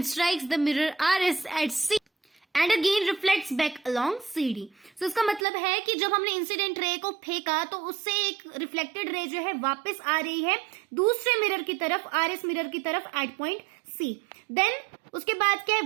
strikes the mirror RS at C and again reflects back along CD. So इसका मतलब है कि जब हमने इंसिडेंट रे को फेंका तो उससे एक रिफ्लेक्टेड रे जो है वापस आ रही है दूसरे मिरर की तरफ, RS मिरर की तरफ एट पॉइंट C. देन उसके बाद क्या है,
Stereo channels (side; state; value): left; drops out; at 5.5 s